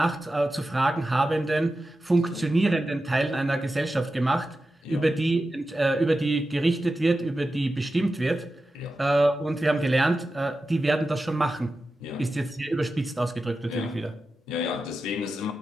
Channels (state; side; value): normal; both; correlation 0.92